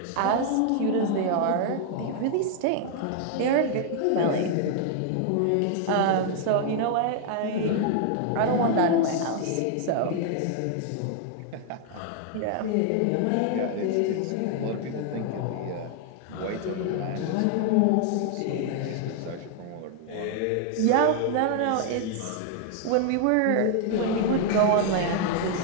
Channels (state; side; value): different; both; correlation 0.00